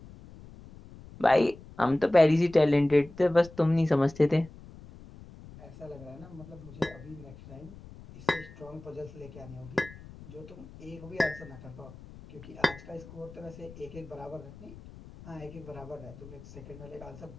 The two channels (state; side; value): noise; left; rumble, 18 dB below the sound